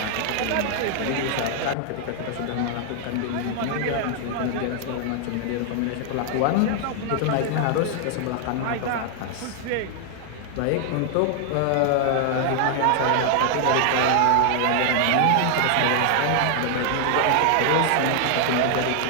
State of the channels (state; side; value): different; both; correlation 0.00